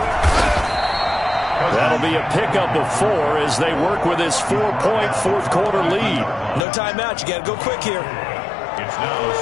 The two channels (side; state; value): right; drops out; at 6.7 s